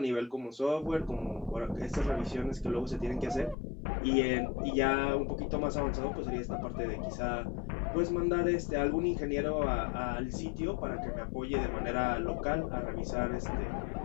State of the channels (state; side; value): drops out; right; at 3.6 s